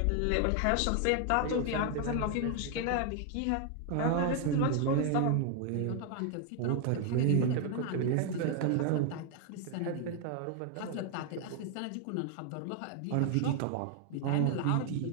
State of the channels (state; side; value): different; both; correlation 0.00